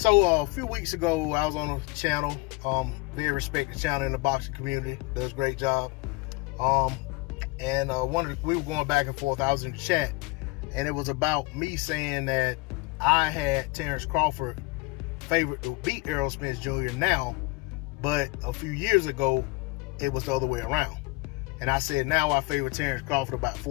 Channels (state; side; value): quieter; right; 24.7 dB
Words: a few weeks ago, I was on a channel, very respected channel in the boxing community, does a great job. We were going back and forth. I was in the chat, and it was about me saying that I had Terence Crawford favored to beat Errol Spence Jr. now, but a few years ago, it was the other way around. And I said now I favor Terence Crawford about